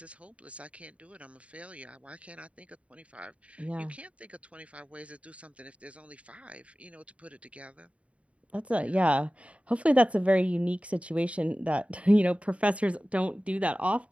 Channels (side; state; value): left; late; 0.064 ms